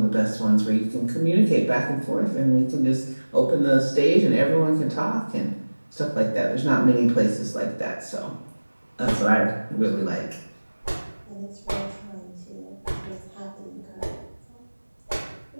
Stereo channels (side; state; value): both; inverted; correlation -1.00